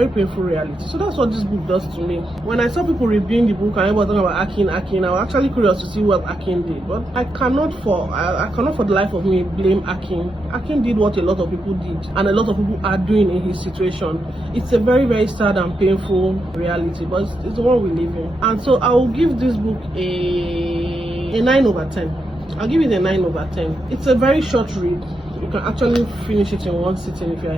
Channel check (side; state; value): both; normal; correlation 0.84